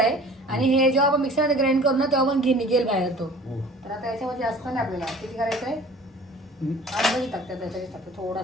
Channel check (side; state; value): both; normal; correlation 0.46